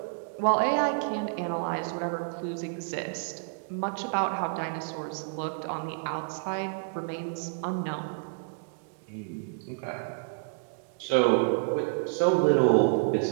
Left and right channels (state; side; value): silent; left; digital silence